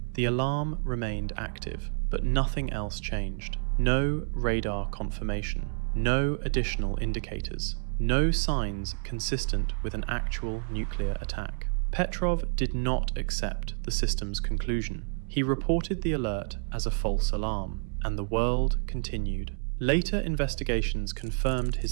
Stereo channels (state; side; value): silent; left; 58 dB below the other